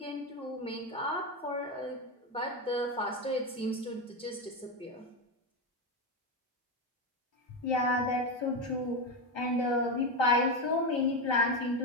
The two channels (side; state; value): both; normal; correlation 0.12